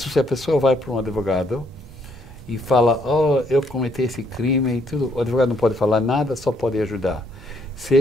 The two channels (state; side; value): normal; both; correlation 0.70